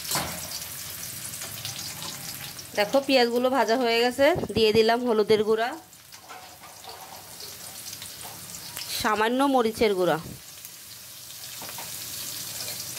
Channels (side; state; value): both; identical; correlation 1.00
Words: দেখো পেঁয়াজগুলো ভাজা হয়ে গেছে। দিয়ে দিলাম হলুদের গুঁড়া, সামান্য মরিচের গুঁড়া,